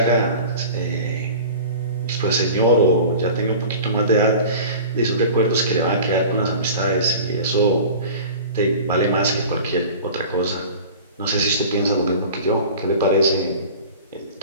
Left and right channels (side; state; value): both; inverted; correlation -0.39